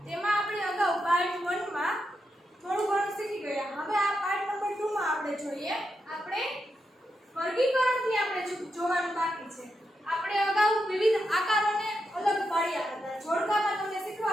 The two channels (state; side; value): normal; both; correlation 0.85